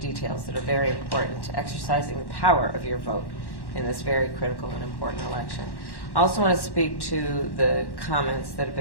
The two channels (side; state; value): right; late; 1.1 ms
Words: details that are very important to exercising the power of your vote in this very critical and important election. I also want to speak to the comments that have